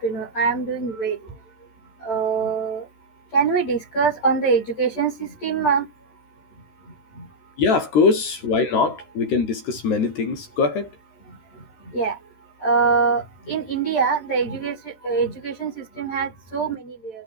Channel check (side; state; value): right; late; 13 ms